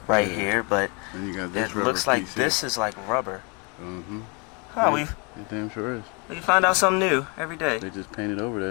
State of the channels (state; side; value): quieter; right; 32.6 dB